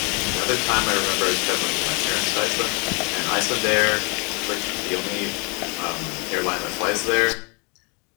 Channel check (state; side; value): quieter; right; 32.5 dB